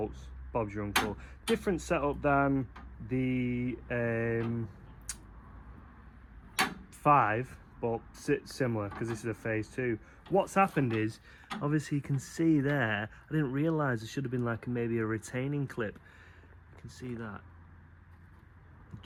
Bob's your uncle. Different setup than the 5, but similar, because this is a phase 2. What's happened is, obviously you can see there, I didn't realise there should have been like maybe a retaining clip. You can see that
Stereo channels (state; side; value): identical; both; correlation 1.00